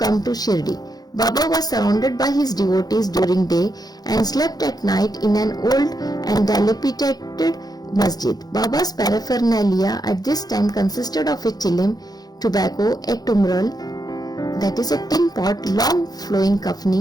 to Shirdi. Baba was surrounded by his devotees during day and slept at night in an old and dilapidated masjid. Baba's paraphernalia at this time consisted of a chilim, tobacco, a tumral, that is a tin pot, long flowing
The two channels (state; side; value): late; right; 0.19 ms